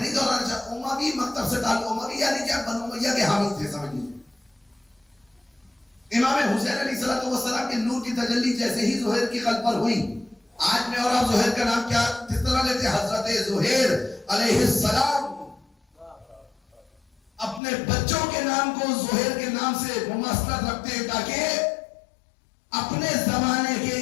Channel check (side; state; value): right; drops out; at 17.6 s